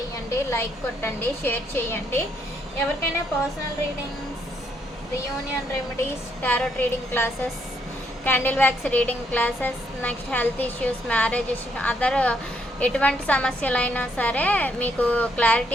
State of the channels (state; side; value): normal; both; correlation 0.73